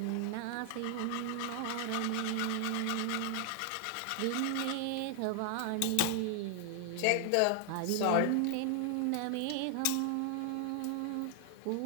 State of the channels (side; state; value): both; different; correlation 0.00